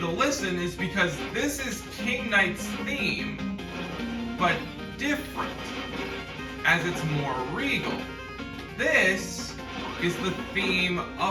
to listen is because this is King Knight's theme, but different, as it's more regal. This is the theme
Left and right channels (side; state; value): both; identical; correlation 1.00